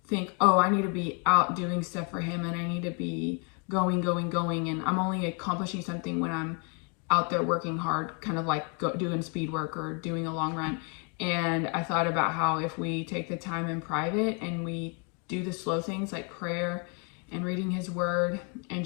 think, oh, I need to be out doing stuff for him, and I need to be going, and I'm only accomplishing something when I'm out there working hard, kind of like doing speed work or doing a long run. And I thought about how if we take the time in private and we do the slow things like prayer and reading his word and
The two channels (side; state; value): right; quieter; 36.2 dB